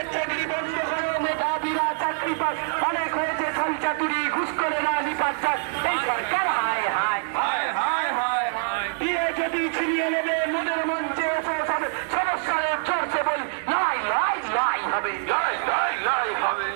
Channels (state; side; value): silent; left; digital silence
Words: চাকরি বন্ধ করে মেধাবীরা চাকরি পাস। অনেক হয়েছে খলচাতুরি ঘুষ করে না নিপাত চাষ। এই সরকার হায় হায় হায় হায় হায় হায়। দিয়ে যদি ছিনিয়ে নেবে মনের মঞ্চে এসে যাবে সমস্যার চর্চে বলি লাই লাই লাই হবে লাই লাই লাই হবে।